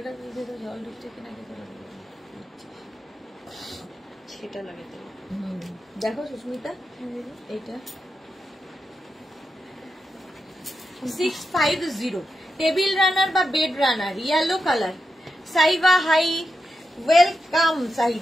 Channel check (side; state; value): both; normal; correlation 0.87